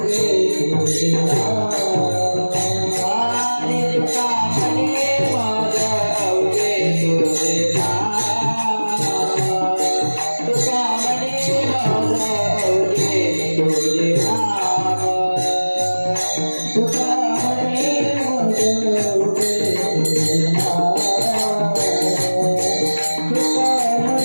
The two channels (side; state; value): both; inverted; correlation -1.00